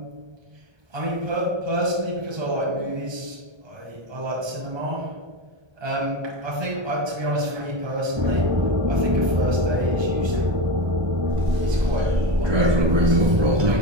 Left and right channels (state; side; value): late; left; 1.2 ms